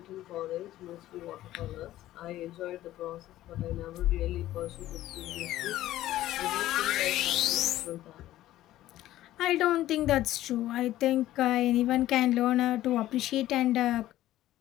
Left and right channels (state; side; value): quieter; right; 14.4 dB